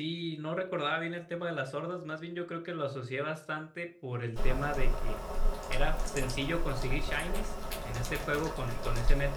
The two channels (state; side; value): identical; both; correlation 1.00